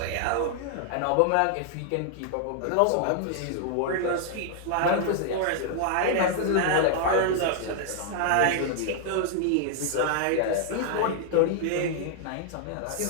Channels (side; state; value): both; different; correlation -0.01